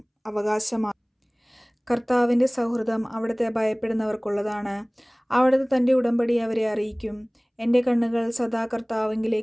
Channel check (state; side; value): identical; both; correlation 1.00